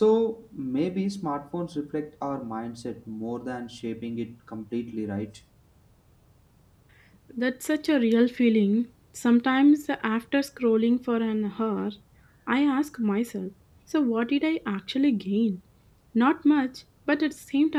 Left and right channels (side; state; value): both; identical; correlation 1.00